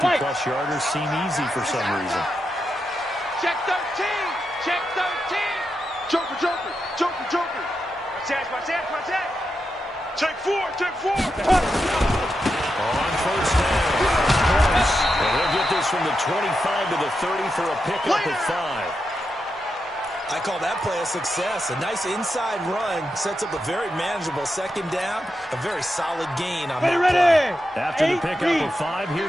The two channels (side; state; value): both; normal; correlation 0.87